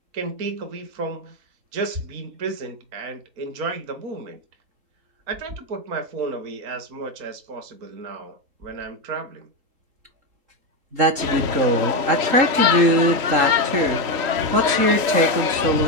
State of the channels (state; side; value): late; left; 3.8 ms